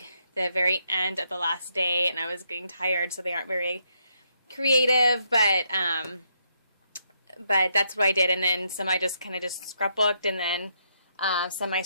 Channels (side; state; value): both; inverted; correlation -0.76